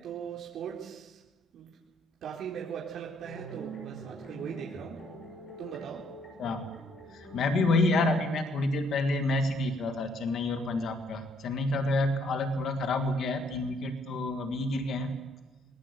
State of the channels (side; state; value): both; normal; correlation 0.67